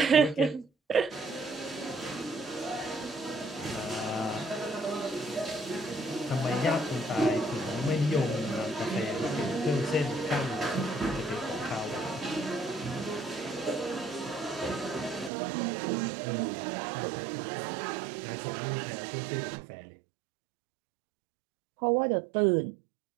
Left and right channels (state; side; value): drops out; left; at 15.3 s